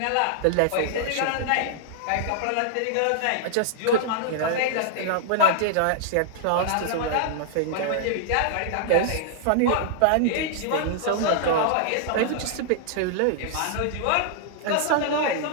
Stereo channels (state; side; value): different; both; correlation -0.01